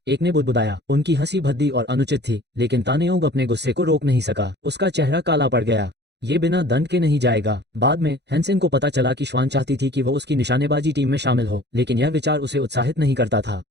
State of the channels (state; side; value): late; left; 0.50 ms